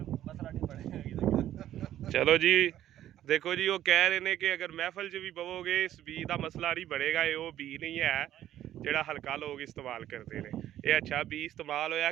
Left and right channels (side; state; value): left; quieter; 12.3 dB